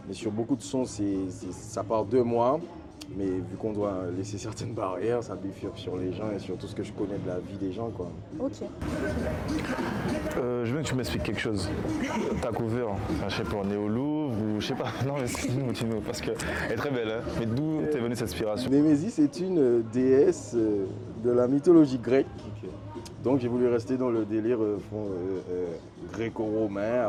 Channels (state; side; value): identical; both; correlation 1.00